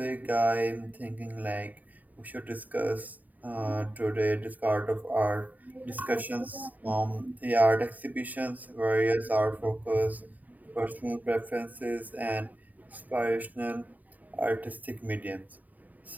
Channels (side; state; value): left; late; 0.079 ms